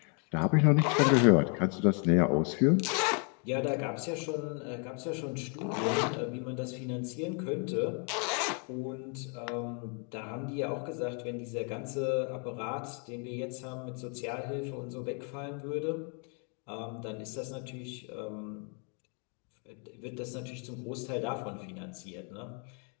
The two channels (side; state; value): right; quieter; 38.6 dB